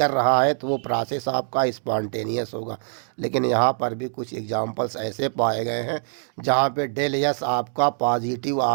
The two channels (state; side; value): silent; left; digital silence